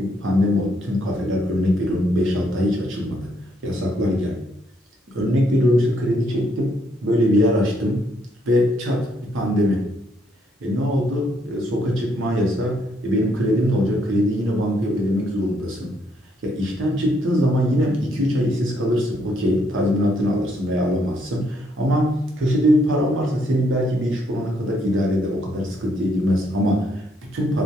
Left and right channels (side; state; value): both; normal; correlation 0.72